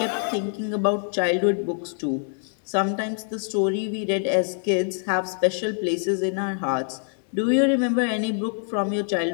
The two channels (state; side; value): silent; right; digital silence